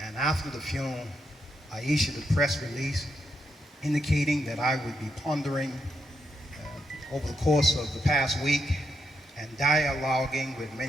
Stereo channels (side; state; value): both; normal; correlation 0.82